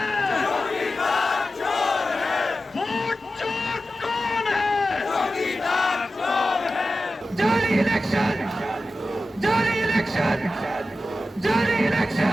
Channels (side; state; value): both; normal; correlation 0.93